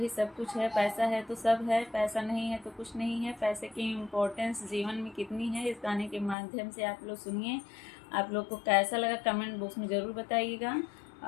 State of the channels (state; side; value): drops out; right; at 6.4 s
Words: सब कुछ है। पैसा है तो सब है, पैसा नहीं है तो कुछ नहीं है। पैसे की इम्पोर्टेंस जीवन में कितनी है, इस गाने के माध्यम से आप लोग सुनिए। आप लोग को कैसा लगा कमेंट बॉक्स में ज़रूर बताइएगा